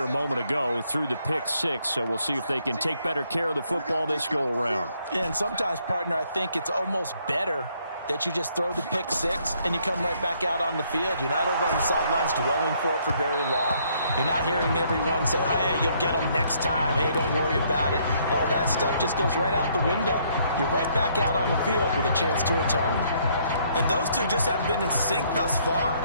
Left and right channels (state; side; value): inverted; both; correlation -0.68